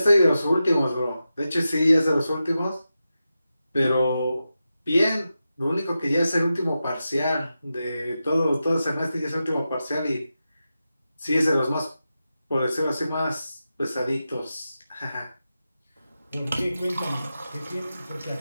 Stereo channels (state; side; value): inverted; both; correlation -0.91